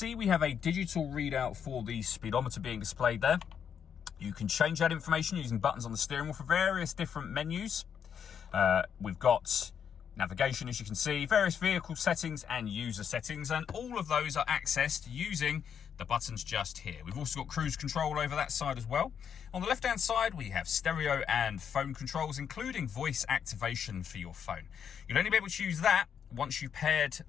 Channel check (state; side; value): quieter; right; 7.8 dB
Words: we have a digital readout for the speedometer being displayed there. You can change that information using buttons on the steering wheel for various different menus. We've got navigation, as you can see, various vehicle settings and user settings, and all of those are accessed using the buttons just here. We've also got cruise control over that side as well. On the left-hand side, we have stereo and phone controls, including voice activation for your phone. You'll only be able to use that once you've paired